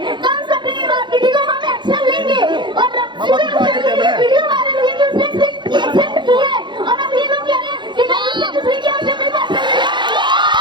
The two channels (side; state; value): left; late; 0.23 ms